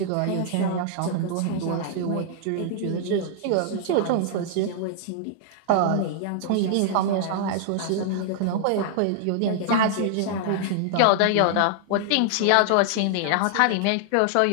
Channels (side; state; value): both; different; correlation -0.01